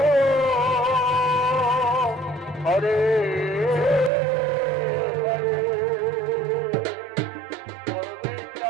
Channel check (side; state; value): left; drops out; at 4.1 s